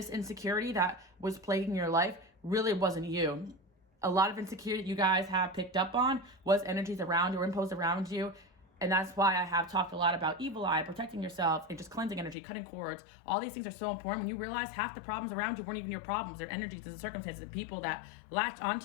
insecurity that was plaguing your life really wasn't you. A lot of insecurity you guys have picked up on was energies around you or imposed around you. And that's why I have talked a lot about evil eye, protecting yourself, and just cleansing energy, cutting cords. All these things are so important. When you realize half the problems around you weren't even your problems, they're energies and circumstances and people that latched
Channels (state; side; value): drops out; right; at 12.4 s